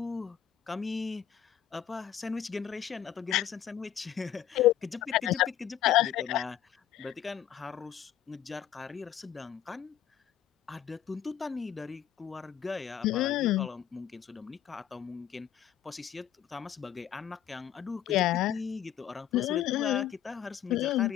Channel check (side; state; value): right; quieter; 10.5 dB